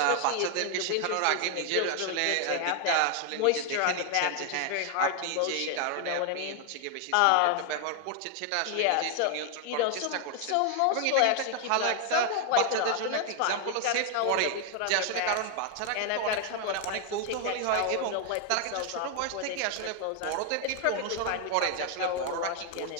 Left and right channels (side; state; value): both; different; correlation 0.00